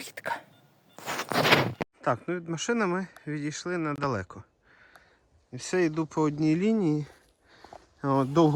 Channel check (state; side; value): identical; both; correlation 1.00